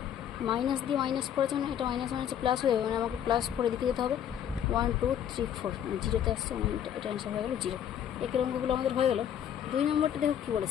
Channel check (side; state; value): right; quieter; 9.7 dB